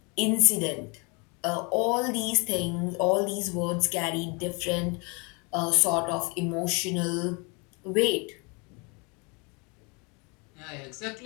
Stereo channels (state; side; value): quieter; right; 31.0 dB